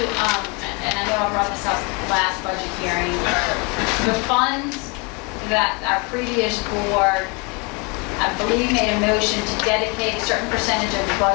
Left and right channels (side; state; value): right; quieter; 30.9 dB